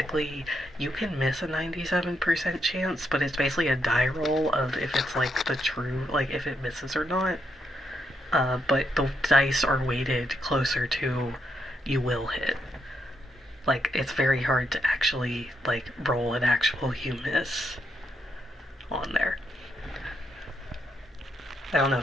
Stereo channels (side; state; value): both; normal; correlation 0.79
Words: you can miss a 97% chance, but it's basically a die roll of if it's like the true, like if it misses or not. But the dice are weighted closer to you will hit. Like, it's very hard to actually, like, roll an actual you miss on there. I don't know